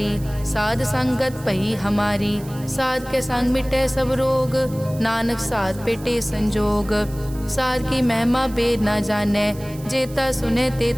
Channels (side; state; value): right; noise; hiss, 20 dB below the sound